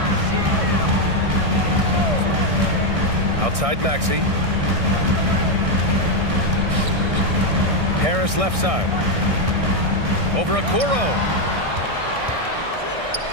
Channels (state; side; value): late; left; 1.6 ms